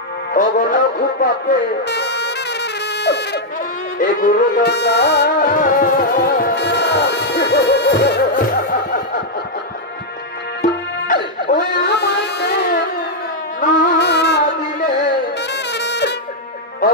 খুব পাপে এগুলো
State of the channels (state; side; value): normal; both; correlation -0.03